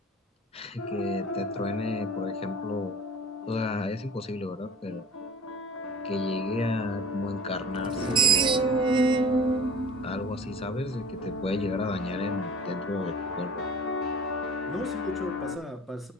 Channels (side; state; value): both; normal; correlation 0.42